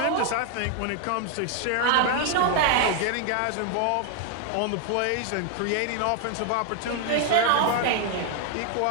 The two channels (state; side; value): different; both; correlation 0.00